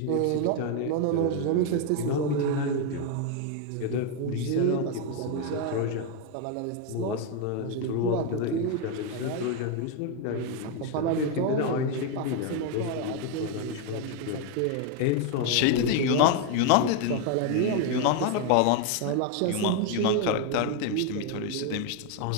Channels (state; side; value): different; both; correlation 0.01